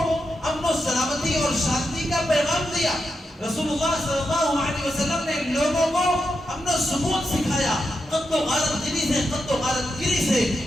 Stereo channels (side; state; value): both; normal; correlation 0.86